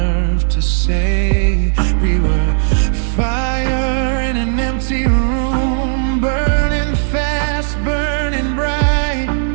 to say. We were fire in an empty room, burning fast, burning bright.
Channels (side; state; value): left; silent; 63 dB below the other